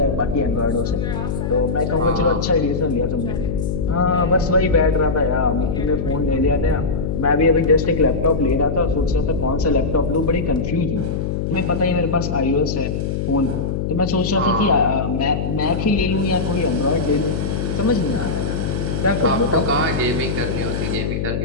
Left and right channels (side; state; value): left; noise; hum, 2 dB below the sound